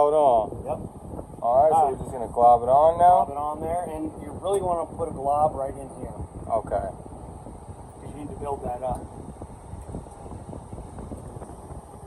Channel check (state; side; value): identical; both; correlation 1.00